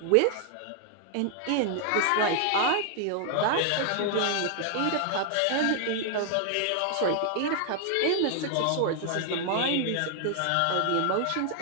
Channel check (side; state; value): both; different; correlation 0.00